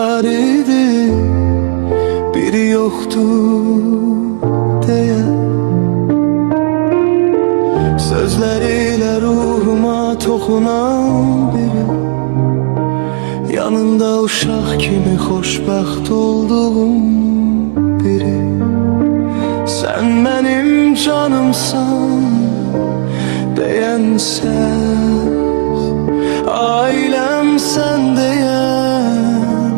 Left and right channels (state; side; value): silent; left; digital silence